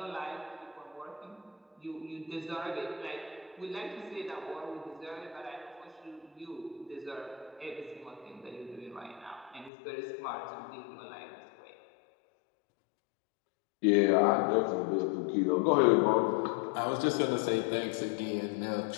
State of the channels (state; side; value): drops out; right; at 9.7 s